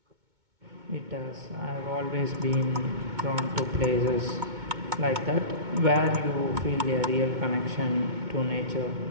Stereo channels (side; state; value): left; late; 2.2 ms